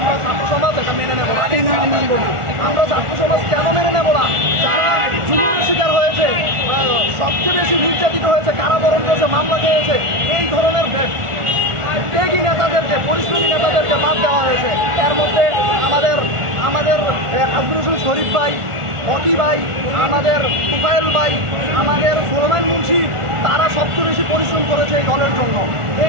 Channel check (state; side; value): late; left; 1.4 ms